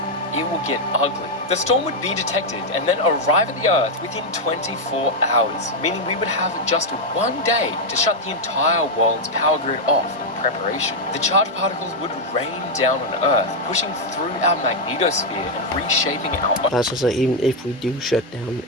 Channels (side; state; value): both; normal; correlation 0.01